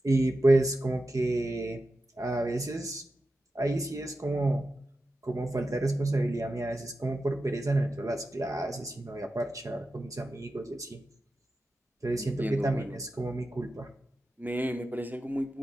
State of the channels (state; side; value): normal; both; correlation 0.91